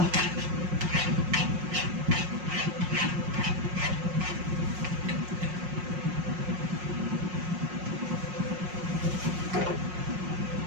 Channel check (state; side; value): late; left; 5.5 ms